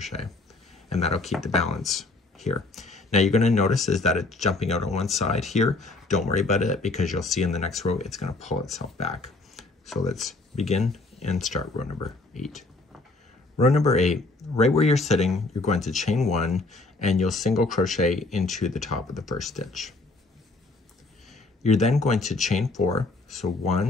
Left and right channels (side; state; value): right; quieter; 3.3 dB